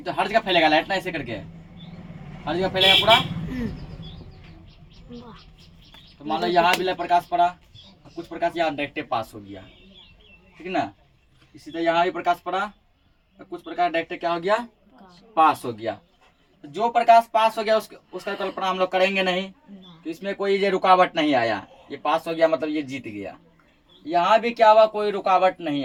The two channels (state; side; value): identical; both; correlation 1.00